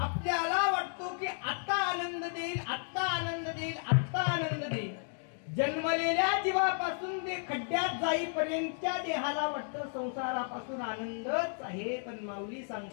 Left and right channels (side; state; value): right; silent; 56 dB below the other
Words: आपल्याला वाटतो की आता आनंद देईल, आत्ता आनंद देईल, आत्ता आनंद देईल. जन्मलेल्या जीवापासून ते खड्ड्यात जाईपर्यंतच्या देहाला वाटतं संसारापासून आनंदच आहे. पण माऊली